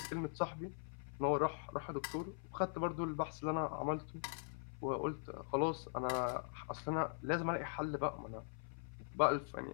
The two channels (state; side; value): silent; right; 50 dB below the other